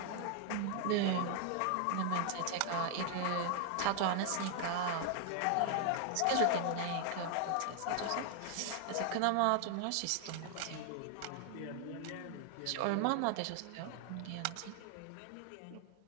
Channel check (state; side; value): different; both; correlation 0.00